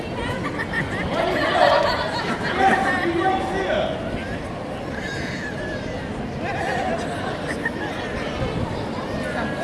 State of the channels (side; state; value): both; identical; correlation 1.00